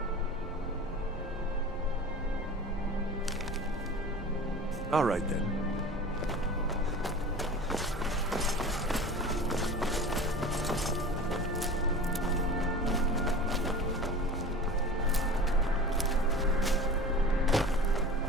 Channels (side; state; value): both; normal; correlation 0.36